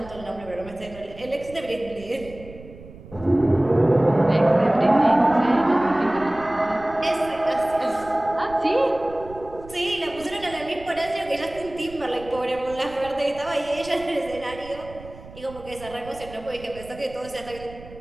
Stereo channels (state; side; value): noise; right; rumble, 18 dB below the sound